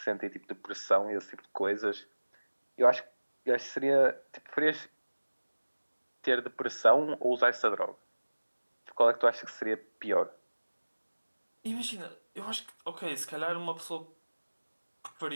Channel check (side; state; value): both; inverted; correlation -1.00